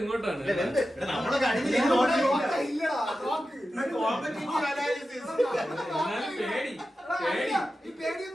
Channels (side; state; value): both; normal; correlation 0.92